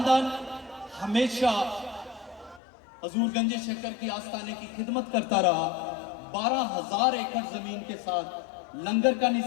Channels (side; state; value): right; drops out; at 2.6 s